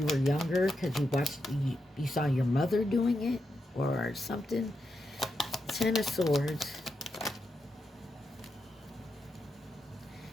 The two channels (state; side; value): normal; both; correlation 0.85